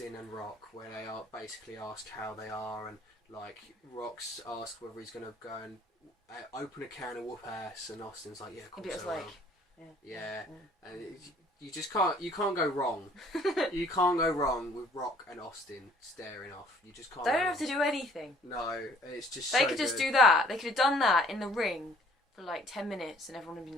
and Rock, where they are basically ask how they are, and like Rock's asked whether he's going to go and open a can and whoop ass, and Austin's like, yeah, of course I will. Yeah. And you just can't go wrong. You can't go wrong with Rock and Austin staring off. You just can't. They don't have to do anything. No, it's just. They could just do that. They could have done that in the ring for like 10 minutes, and everyone would have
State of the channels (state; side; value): normal; both; correlation 0.57